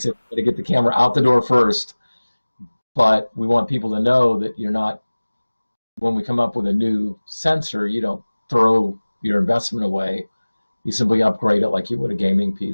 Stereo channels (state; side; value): inverted; both; correlation -1.00